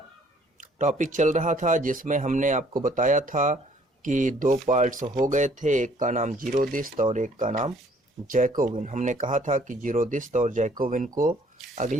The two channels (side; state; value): both; normal; correlation 0.60